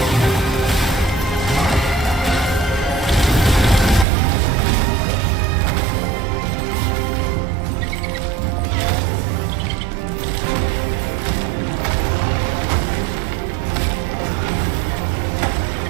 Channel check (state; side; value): drops out; left; at 4.0 s